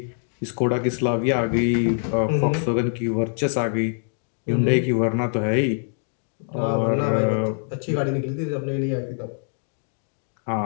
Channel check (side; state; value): right; silent; 61 dB below the other